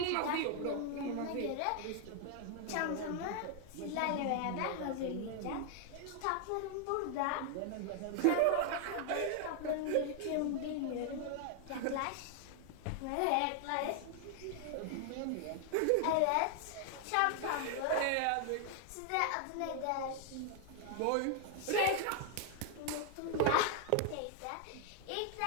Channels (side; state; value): both; different; correlation 0.00